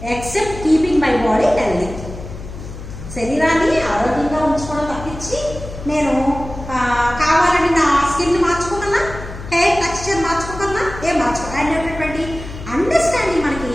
except keeping my body healthy. శరీరాన్ని ఆరోగ్యంగా ఉంచుకోవడం తప్పించి నేను కావాలని నా skin మార్చుకోగలనా, hair texture మార్చుకోగలనా? ఏం మార్చుకోవాలనేటటువంటి understanding మనకి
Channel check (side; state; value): left; noise; hum, 12 dB below the sound